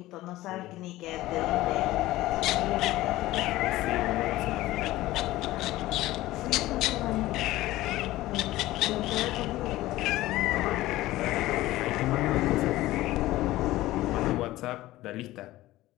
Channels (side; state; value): right; quieter; 16.8 dB